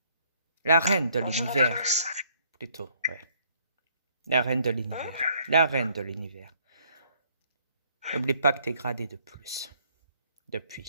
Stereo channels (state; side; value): inverted; both; correlation -0.64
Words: La reine de l'univers, plutôt, ouais. La reine de l'univers. La reine de l'univers. N'oublie pas que t'es gradé de plus.